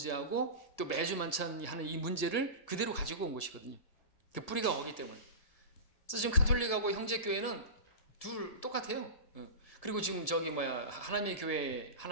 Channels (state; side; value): late; right; 1.6 ms